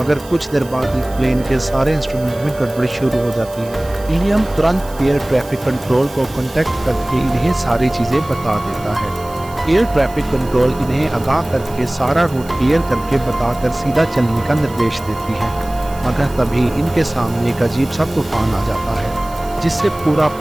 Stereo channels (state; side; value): noise; right; hiss, 20 dB below the sound